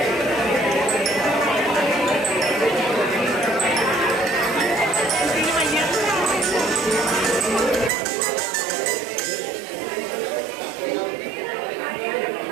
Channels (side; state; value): left; drops out; at 7.9 s